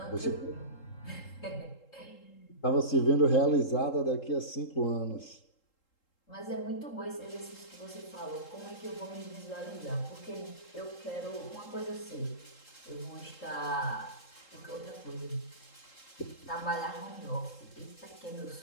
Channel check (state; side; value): late; right; 3.8 ms